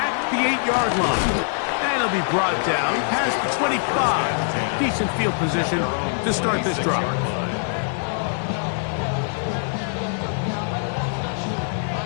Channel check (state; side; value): silent; right; digital silence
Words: the 8-yard line. And it'll be brought down past the 25. Decent field position to start this drive.